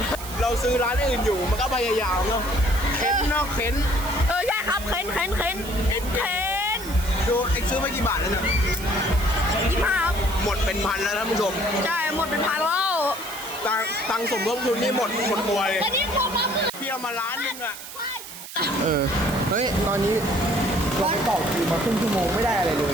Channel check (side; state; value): right; noise; hiss, 12 dB below the sound